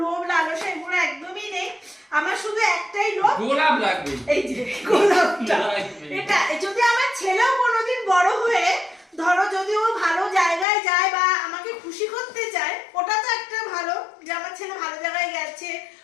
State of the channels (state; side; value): drops out; right; at 10.7 s